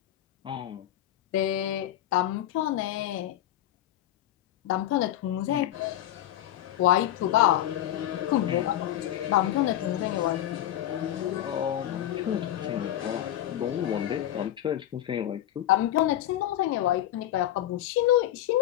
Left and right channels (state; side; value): quieter; right; 12.5 dB